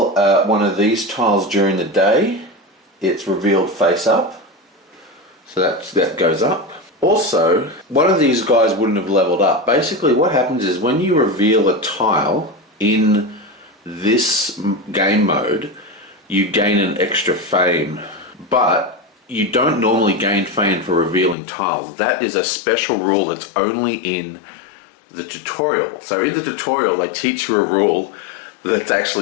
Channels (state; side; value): drops out; right; at 21.4 s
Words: one of these tiles during the day, it's revealed face up, so that goes up. Also, one of these guys wouldn't have leveled up. Basically what happens is when you reveal a tile in this game mode, you gain an extra fame, but you don't normally gain fame for revealing tiles. That is a special rule that's only in the tutorial. So in the tutorial they teach you a rule that's